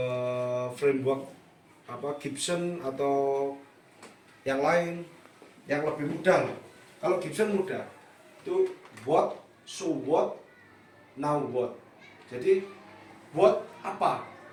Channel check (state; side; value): identical; both; correlation 1.00